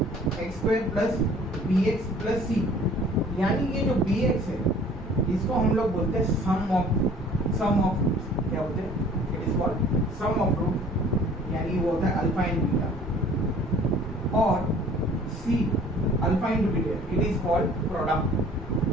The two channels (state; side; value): normal; both; correlation 0.51